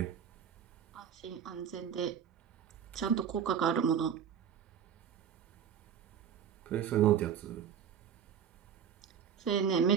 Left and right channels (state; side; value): quieter; left; 8.2 dB